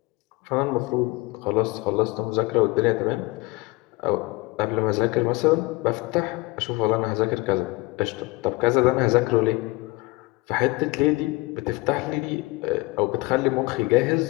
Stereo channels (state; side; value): quieter; right; 23.4 dB